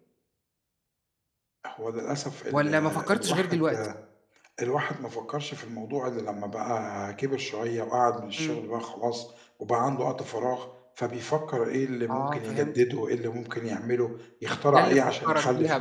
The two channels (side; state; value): both; identical; correlation 1.00